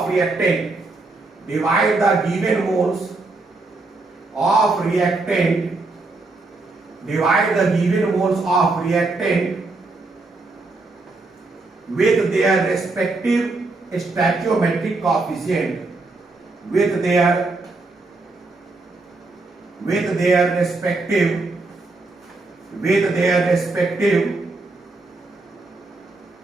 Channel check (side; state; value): left; quieter; 3.3 dB